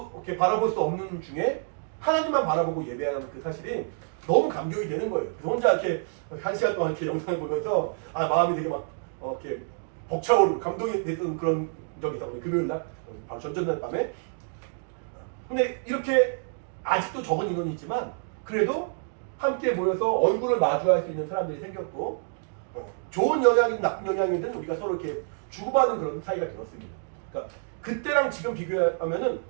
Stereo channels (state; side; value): silent; left; digital silence